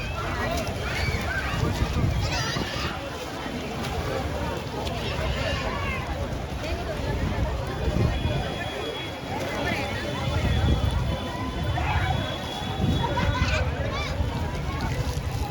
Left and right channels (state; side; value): identical; both; correlation 1.00